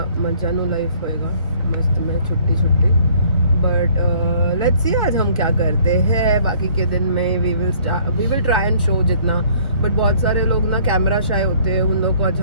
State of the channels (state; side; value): inverted; both; correlation -0.58